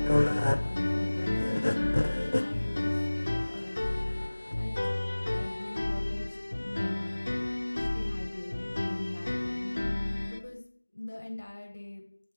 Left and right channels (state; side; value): inverted; both; correlation -1.00